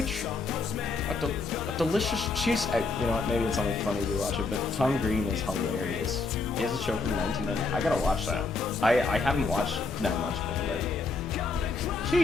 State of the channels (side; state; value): right; quieter; 4.0 dB